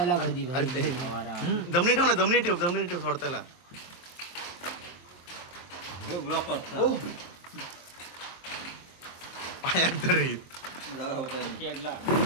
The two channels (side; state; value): right; late; 23 ms